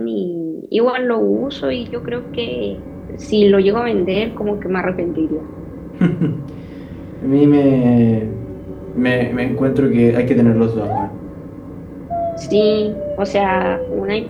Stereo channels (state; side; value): identical; both; correlation 1.00